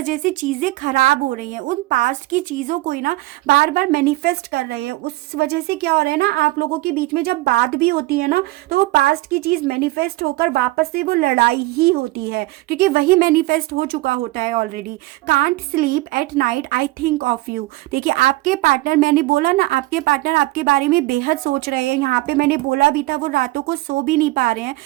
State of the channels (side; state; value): left; quieter; 19.7 dB